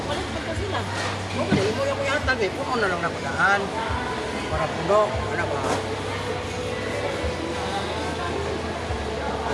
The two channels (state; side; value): identical; both; correlation 1.00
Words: pa sila. Oo, mo yung kuyatan eh. Puno na lang na padaan. Para puno. Ano ba?